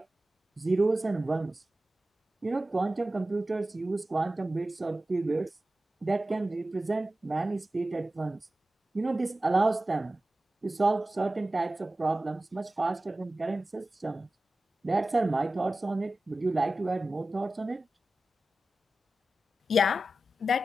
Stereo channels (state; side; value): normal; both; correlation 0.95